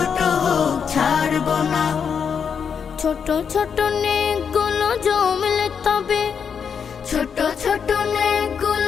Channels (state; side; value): quieter; right; 6.9 dB